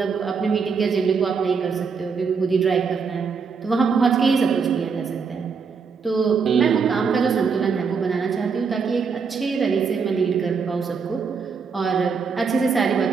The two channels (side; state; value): left; quieter; 5.6 dB